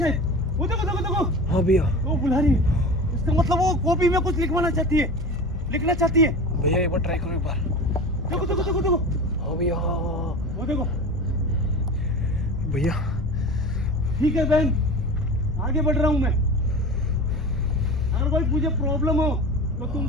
वो देखो देखो देखो। हाँ भैया वो बुला रही है, इसका मतलब वो कॉपी में कुछ लिखवाना चाहती है, लिखना चाहती है। भैया एक बार ट्राई करो एक बार। देखो देखो देखो देखो। हाँ भैया वो देखो भैया। ठीक है बहन, आगे बढ़ रहा हूँ मैं। अगर कोई मुझे प्रॉब्लम हो तो तुम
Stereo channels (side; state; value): both; normal; correlation 0.32